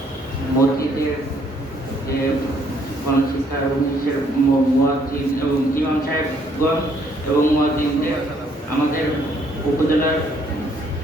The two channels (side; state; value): both; normal; correlation 0.67